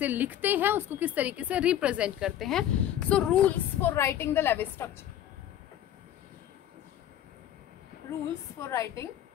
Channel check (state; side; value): quieter; right; 11.3 dB